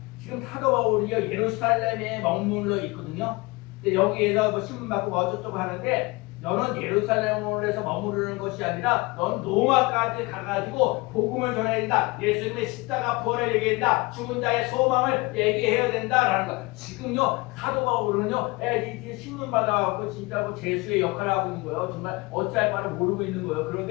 지금 사도 바울이 예루살렘에 머물러 있거든요. 근데 여기에서 뭐 신문 받고 뭐 어쩌고 하는데 너는 예루살렘에서 머무르는 것이 아니라 넌 로마까지 가가지고 복음을 전해야 된다. 예수님의 십자가 부활을 얘기해야 된다. 죽은 자의 소망을 얘기해야 된다라는 거. 지금요 사도 바울은요 신문 받아갖고 진짜 뭐 재수의 역할을 하고 있는 거예요. 정말 어찌할 바를 모르고 있는 거예요.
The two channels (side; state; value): right; quieter; 24.7 dB